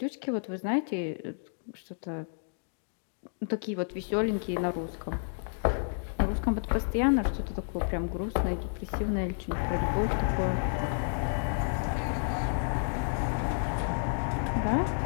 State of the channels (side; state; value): right; silent; digital silence